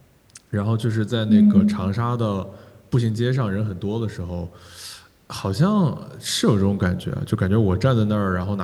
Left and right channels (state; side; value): identical; both; correlation 1.00